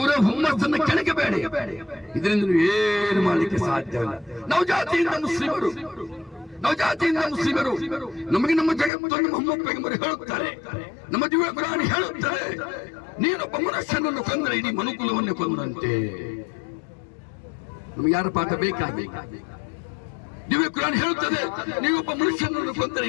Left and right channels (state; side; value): drops out; right; at 8.9 s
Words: ಹುಮ್ಮಸ್ಸನ್ನು ಕೆಣಕಬೇಡಿ. ಇದರಿಂದ ನೀವು ಏನು ಮಾಡಲಿಕ್ಕೆ ಸಾಧ್ಯವಿಲ್ಲ. ನಾವು ಜಾತಿಯಿಂದ ಮುಸ್ಲಿಮರು, ನಮಗೆ ನಮ್ಮ ಜಗತ್ತನ್ನು ಮೊಹಮ್ಮದ್ ಪೈಗಂಬರ್ ಹೇಳುತ್ತಾರೆ, ನಮ್ಮ ದಿವ್ಯ ಕುರಾನ್ ಹೇಳುತ್ತಾರೆ, ನೀನೊಬ್ಬ ಮನುಷ್ಯನನ್ನು ಕೊಂದರೆ ಇಡೀ ಮನುಕುಲವನ್ನೇ ಕೊಂದಂತೆ. ನಮಗೆ ಯಾರ ಪಾಠ ಬೇಕಾಗಿ? ದಿವ್ಯ ಕುರಾನ್ ಹೇಳುತ್ತದೆ, ನೀವೊಬ್ಬ ಮನುಷ್ಯನನ್ನು ಕೊಂದರೆ